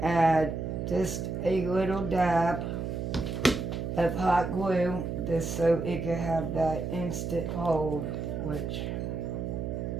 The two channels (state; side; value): noise; right; hum, 4 dB below the sound